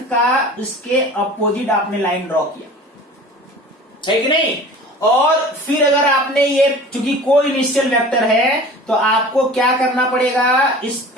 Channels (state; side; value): normal; both; correlation 0.41